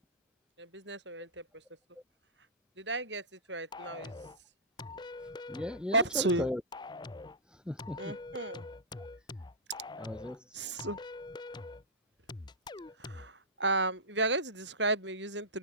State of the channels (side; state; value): both; normal; correlation -0.17